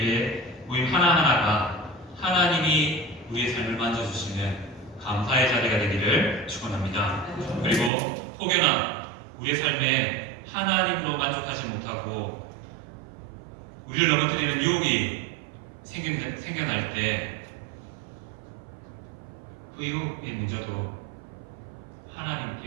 모임 하나하나가 하나님이 우리의 삶을 만져주시는 감사의 자리가 되기를 축원합니다. 그리고 혹여나 우리의 삶에 하나님으로 만족하지 못하고 우리를 넘어뜨리는 유혹이 생겨날 때 그 유혹의 문제도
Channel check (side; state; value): left; drops out; at 7.9 s